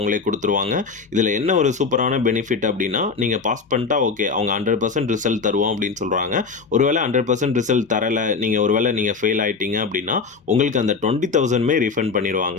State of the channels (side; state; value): right; quieter; 4.9 dB